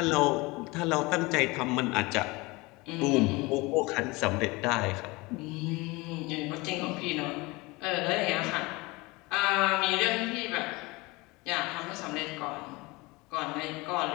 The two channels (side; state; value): right; quieter; 23.7 dB